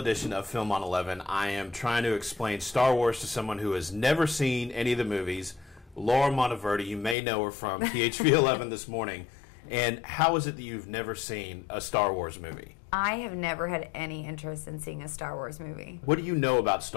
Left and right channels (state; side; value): drops out; right; at 7.2 s